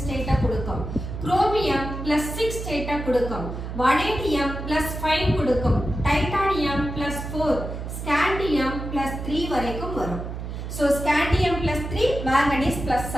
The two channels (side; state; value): right; noise; hum, 7 dB below the sound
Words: ஸ்டேட்டை கொடுக்கும், குரோமியம் +6 ஸ்டேட்டை கொடுக்கும், வனேடியம் +5 கொடுக்கும், டைட்டானியம் +4, ஸ்காண்டியம் +3 வரைக்கும் வரும். So scandium +3, manganese